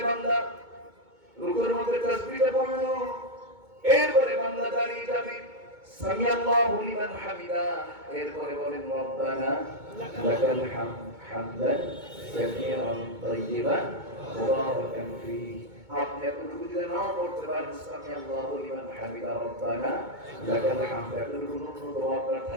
বান্দা, রুকুর মধ্যে তাসবিহটা পড়লো, এরপরে বান্দা দাঁড়িয়ে যাবে, সামি আল্লাহু লিমান হামিদা, এরপরে বলেন রব্বানা লাকাল হামদ হামদান কাসীরান তাইয়িবান মুবারাকান ফীহি। আপনি এতটুকু যদি নাও পড়তে পারেন, সামি আল্লাহু লিমান হামিদা রব্বানা লাকাল হামদ, এতটুকু ন্যূনতম আপনার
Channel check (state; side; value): late; left; 2.2 ms